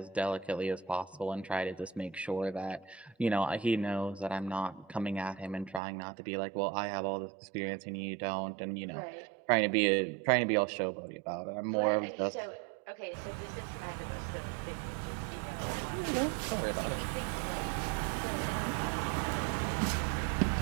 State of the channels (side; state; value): left; drops out; at 5.8 s